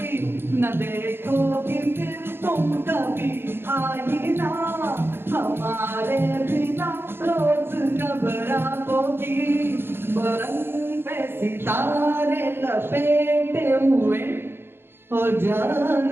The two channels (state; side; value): late; left; 0.11 ms